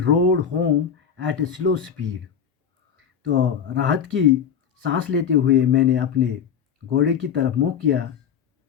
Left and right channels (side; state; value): right; quieter; 7.8 dB